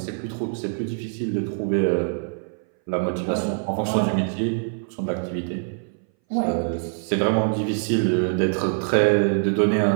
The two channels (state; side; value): silent; left; 60 dB below the other